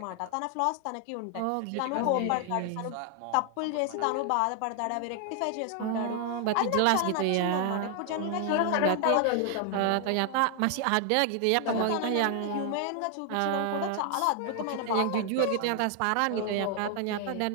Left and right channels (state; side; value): different; both; correlation 0.00